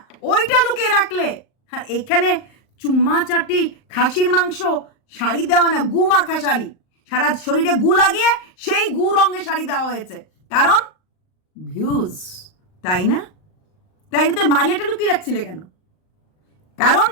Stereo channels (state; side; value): late; right; 38 ms